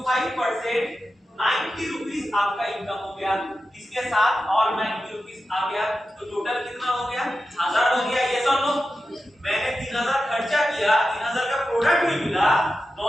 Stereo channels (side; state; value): both; normal; correlation 0.91